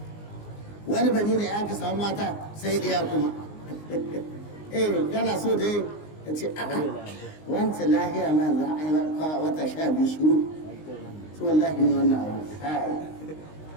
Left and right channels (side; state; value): right; late; 19 ms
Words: wani bani ne aka samu mata sai ɗaya kuma kana so dai ka ce a'a wancan lahiya ma za a yi wata 12 shiru to wallahi ne wannan abu